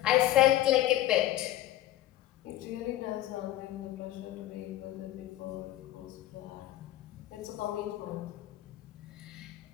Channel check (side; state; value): right; quieter; 14.4 dB